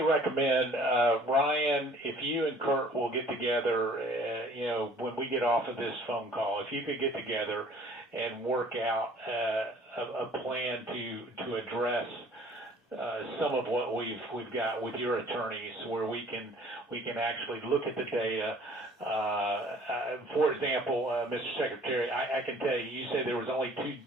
recommend, Ryan, if you and Kurt will get together, when we get off of this phone call, if you could get together and work out a plan to address some of what we've got with your attorneys, where we can actually look at the data. For example, Mr. Secretary, I can tell you, you said there was only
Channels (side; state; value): both; normal; correlation 0.53